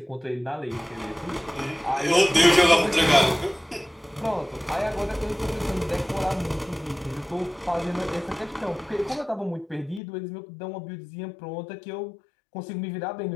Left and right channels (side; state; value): right; drops out; at 10.0 s